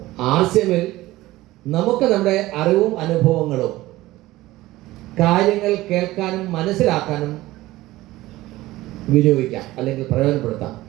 ആർസിഎമ്മിൽ നമുക്ക് നമ്മുടെ അറിവും അനുഭവങ്ങളും കാര്യങ്ങൾ കേൾക്കാനും മനസ്സിലാക്കാനും വിനിയോഗിക്കാം, അല്ലെങ്കിൽ പ്രയോജനപ്പെടുത്താം.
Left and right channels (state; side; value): quieter; left; 17.5 dB